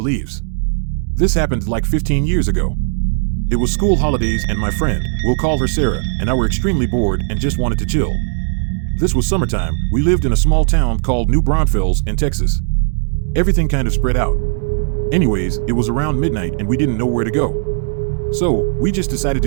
This happened like 15 years ago. It was school holidays and my friend, we'll call her Sarah, and I were extremely bored and just wanted to chill. This was summertime. We lived in a small town called New Braunfels in Texas. Everything kind of spread out. Anyways, it was around midnight and we didn't know where to go. So, we just decided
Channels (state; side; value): silent; left; digital silence